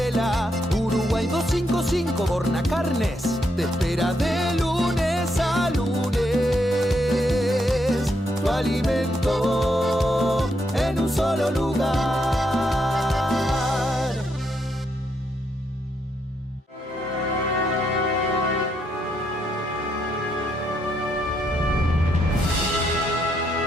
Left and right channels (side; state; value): both; normal; correlation 0.78